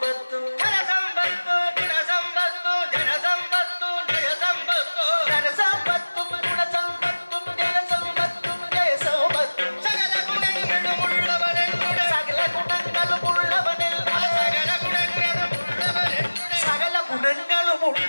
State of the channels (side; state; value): both; inverted; correlation -1.00